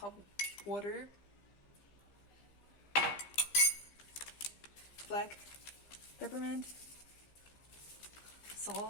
water, black peppermint,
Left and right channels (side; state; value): right; late; 15 ms